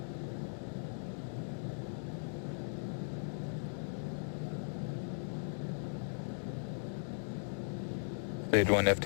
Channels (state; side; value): silent; right; digital silence